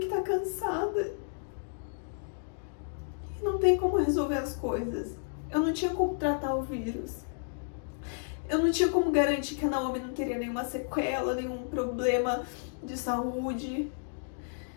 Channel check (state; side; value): silent; right; digital silence